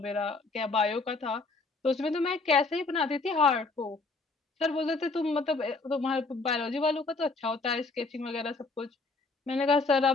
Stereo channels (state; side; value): quieter; right; 3.7 dB